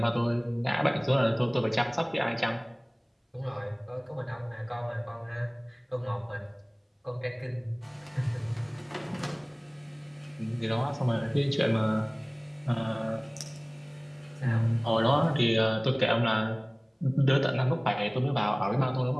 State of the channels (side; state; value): both; identical; correlation 1.00